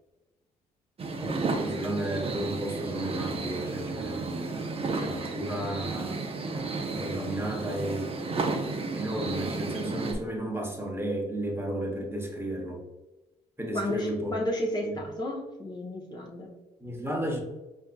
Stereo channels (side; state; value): both; normal; correlation 0.65